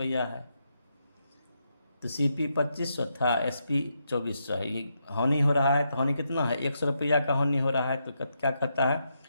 है, तो सीपी 2500 था, एसपी 2400 है। ये हानि हो रहा है, तो हानि कितना है 100 रुपया का हानि हो रहा है। तो क्या करता है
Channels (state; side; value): inverted; both; correlation -0.81